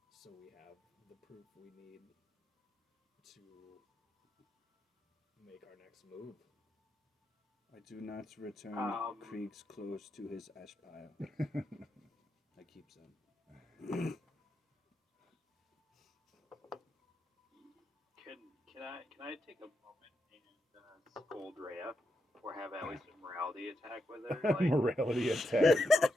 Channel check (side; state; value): both; normal; correlation 0.84